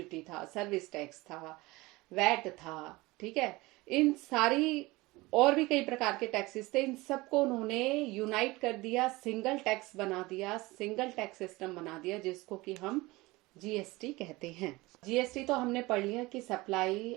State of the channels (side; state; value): left; quieter; 21.4 dB